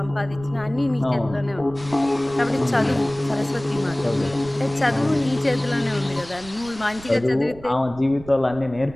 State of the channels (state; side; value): noise; right; rumble, 18 dB below the sound